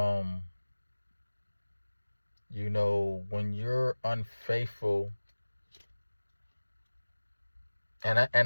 when you're unfaithful, and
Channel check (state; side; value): inverted; both; correlation -1.00